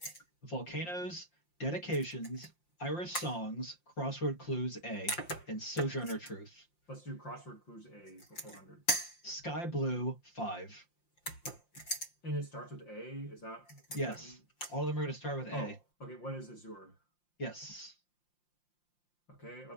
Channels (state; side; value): late; right; 5.7 ms